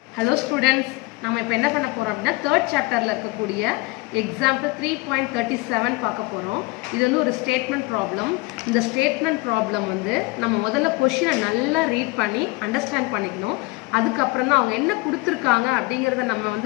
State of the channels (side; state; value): right; quieter; 24.0 dB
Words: Hello students, நம்ம இப்போ என்ன பண்ண போறோம் அப்படினா third chapterல இருக்கக்கூடிய example 3.37 பார்க்க போறோம். இது வந்து ஒரு statement problem. இந்த statement problem வந்து நம்ம முதல்ல क्वेश्चனை நல்லா ரீட் பண்ணி அண்டர்ஸ்டாண்ட் பண்ணிக்கணும். அதுக்கு அப்புறம் தான் அவங்க என்ன கொடுத்திருக்காங்க அப்படிங்கறத நம்ம